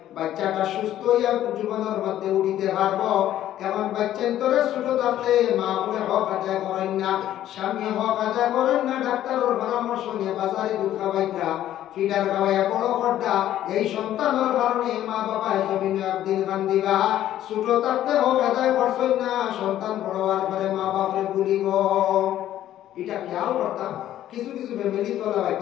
বাচ্চাটা সুস্থ হইয়া জীবনের মধ্যে উঠিতে পারবো এমন বাচ্চা তোরে ছোট থাকতে মা বলে হক আদায় করেন না স্বামী হক আদায় করেন না ডাক্তারের পরামর্শ নিয়ে বাজারে দুধ খাওয়াইতা ফিডার খাওয়াইয়া বড় করতা এই সন্তানের কারণে মা বাবা জমিনে একদিন কান্দিবা ছোট থাকতে হক আদায় করছেন না সন্তান বড় হওয়ার পরে মা বাপরে ভুলিব এটা খেয়াল করতাম কিছু কিছু ফ্যামিলি তোলা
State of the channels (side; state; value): right; quieter; 12.4 dB